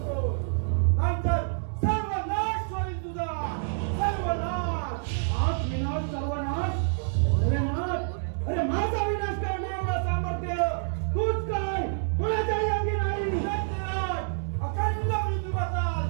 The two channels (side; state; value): left; silent; digital silence